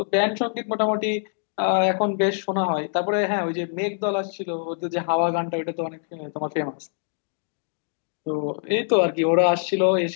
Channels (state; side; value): silent; right; digital silence